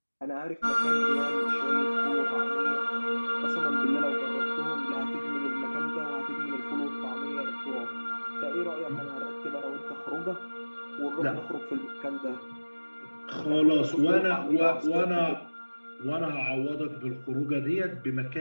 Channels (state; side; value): inverted; both; correlation -1.00